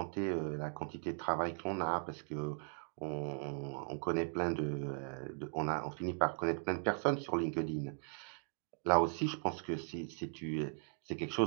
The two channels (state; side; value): silent; left; 52 dB below the other